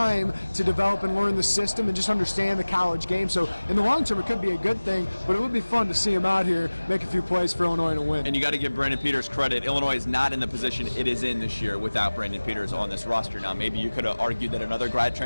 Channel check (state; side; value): inverted; both; correlation -1.00